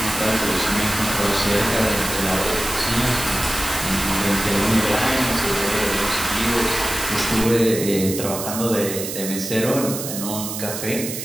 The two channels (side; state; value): right; noise; hiss, 6 dB below the sound